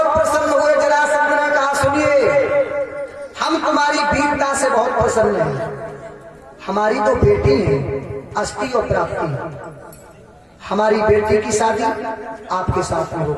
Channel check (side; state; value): both; identical; correlation 1.00